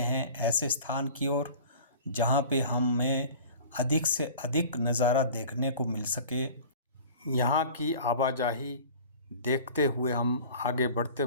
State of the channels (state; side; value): inverted; both; correlation -0.42